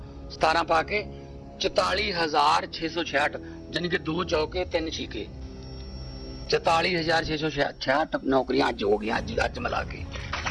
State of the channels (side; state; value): both; identical; correlation 1.00